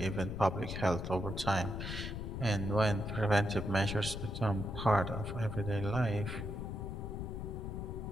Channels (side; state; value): left; noise; rumble, 5 dB below the sound